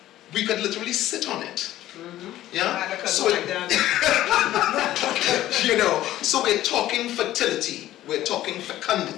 we could literally sit on it. Yeah? So so we're talking fertility, we're talking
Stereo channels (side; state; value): right; quieter; 14.1 dB